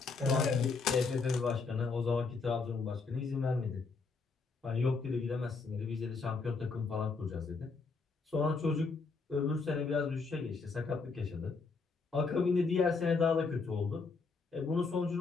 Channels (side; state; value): right; quieter; 4.4 dB